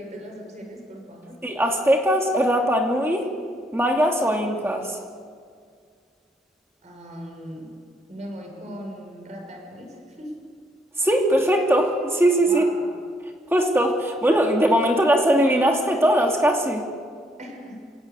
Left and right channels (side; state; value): both; normal; correlation 0.71